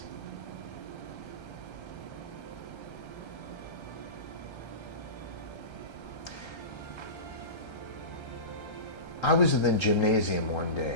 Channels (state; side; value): late; right; 1.3 ms